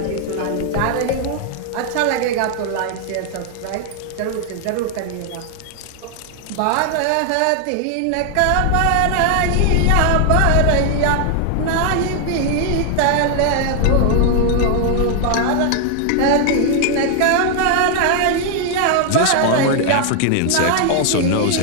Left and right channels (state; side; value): different; both; correlation 0.00